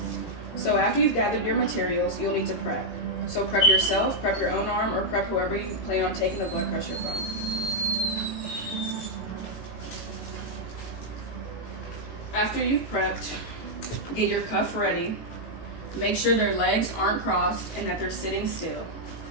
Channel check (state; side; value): late; right; 18 ms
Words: So after you've gathered your materials, you'll need to prep. So prep yourself, prep your own arm, or prep whoever you plan on taking the blood pressure from. After you've prepped, get your cuff ready. Make sure their legs aren't crossed and that they're sitting still.